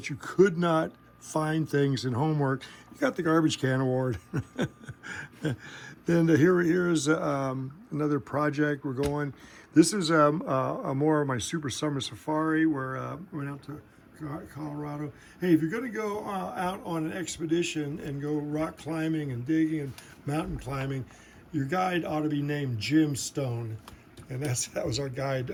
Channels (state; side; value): identical; both; correlation 1.00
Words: you could not find things in homework, you got the Garbage Can Award. Then here's another project we're going. This is more of my super summer safari where we went out to Colorado. Hey, if you're going to go out on an expedition and go rock climbing and digging and mountain climbing, your guide ought to be named Jim Stone, and that was our guide